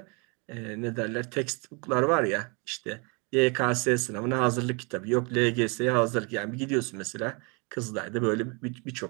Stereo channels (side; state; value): left; quieter; 32.4 dB